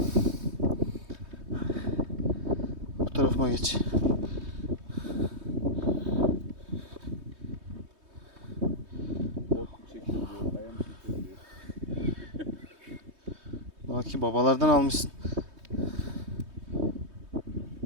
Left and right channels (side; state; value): left; late; 3.2 ms